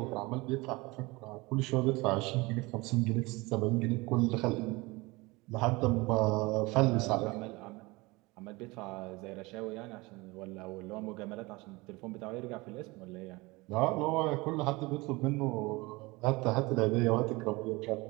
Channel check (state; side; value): quieter; left; 23.5 dB